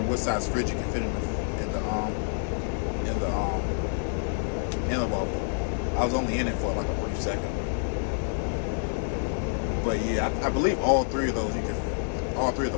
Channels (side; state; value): right; silent; 59 dB below the other